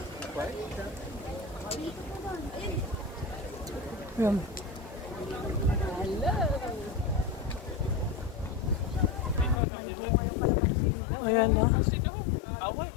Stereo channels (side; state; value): right; drops out; at 9.6 s